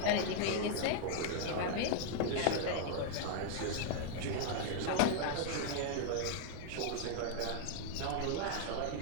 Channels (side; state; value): both; different; correlation -0.01